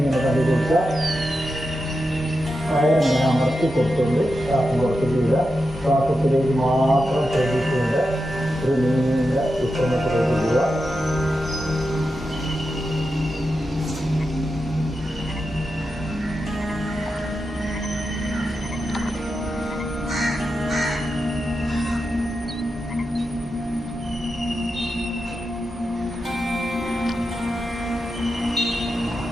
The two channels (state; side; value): normal; both; correlation 0.89